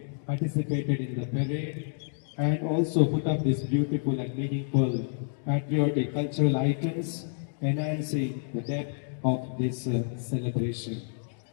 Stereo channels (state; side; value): silent; right; digital silence